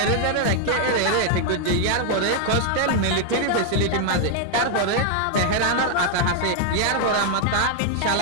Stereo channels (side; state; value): both; different; correlation 0.00